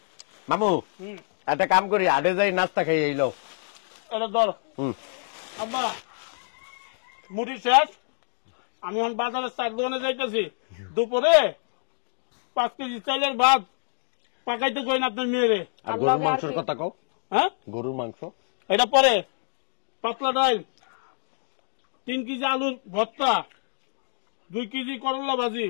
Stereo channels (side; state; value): right; silent; digital silence